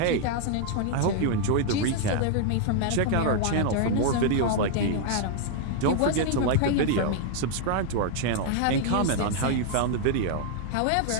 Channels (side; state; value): both; different; correlation 0.00